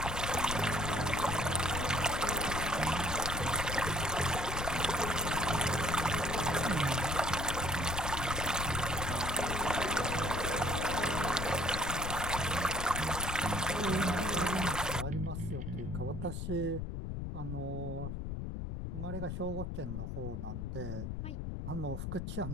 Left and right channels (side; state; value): left; noise; rumble, 4 dB below the sound